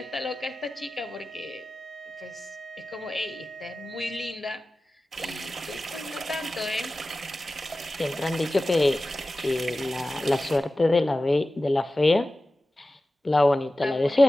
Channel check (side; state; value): both; normal; correlation 0.95